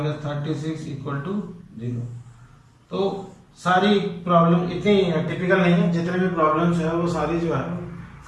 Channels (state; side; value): identical; both; correlation 1.00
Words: 36 equal to 0। तो सारी प्रॉब्लम इतनी टिपिकल नहीं है, जितने भी प्रॉब्लम्स है वो सारी जो है